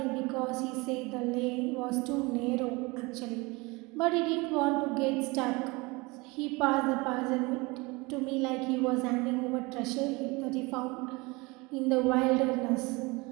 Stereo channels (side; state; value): left; quieter; 25.2 dB